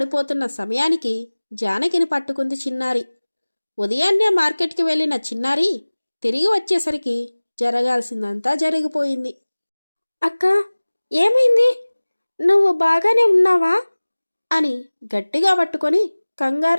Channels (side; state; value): both; inverted; correlation -1.00